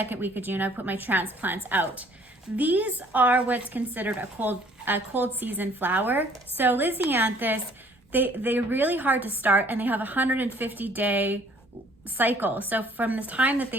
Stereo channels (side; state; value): both; normal; correlation 0.58